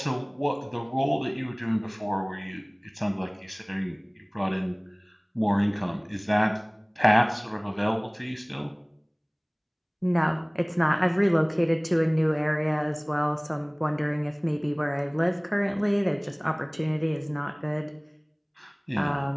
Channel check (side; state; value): both; identical; correlation 1.00